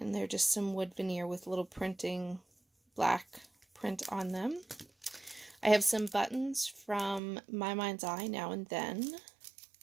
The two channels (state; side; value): drops out; left; at 7.2 s